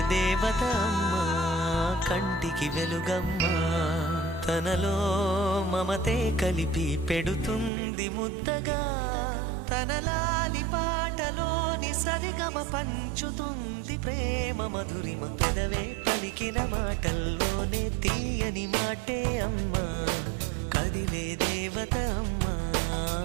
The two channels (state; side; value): drops out; left; at 7.7 s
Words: దేవత అమ్మా, కంటికి వెలుగమ్మా. తనలో మమతే కలిపి పెడుతుంది ముద్దగా, తన లాలి పాటలోని సరిగమ పంచుతుంది ప్రేమ మధురిమ. పెదవే పలికిన మాటల్లోనే తీయని మాటే అమ్మా, కదిలే దేవత అమ్మా,